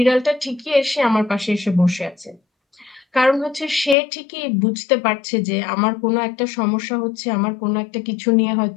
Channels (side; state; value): right; drops out; at 4.0 s